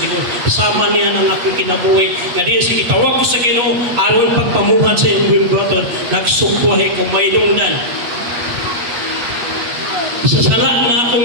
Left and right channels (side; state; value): left; late; 8.4 ms